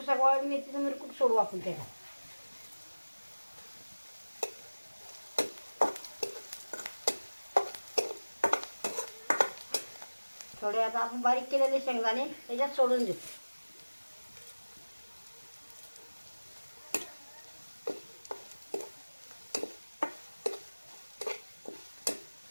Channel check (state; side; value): inverted; both; correlation -1.00